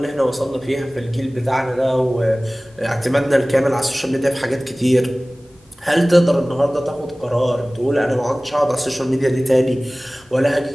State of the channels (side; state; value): both; normal; correlation 0.98